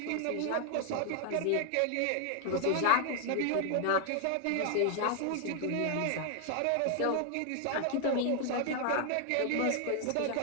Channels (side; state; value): both; different; correlation 0.00